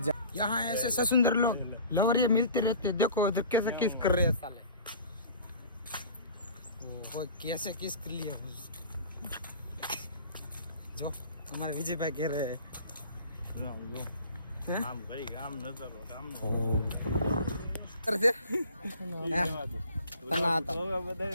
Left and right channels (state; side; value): inverted; both; correlation -0.45